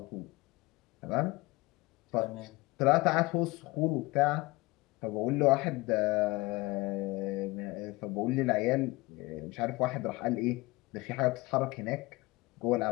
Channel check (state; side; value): quieter; right; 22.4 dB